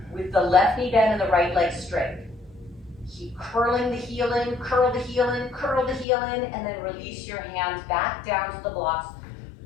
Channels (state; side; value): drops out; right; at 6.1 s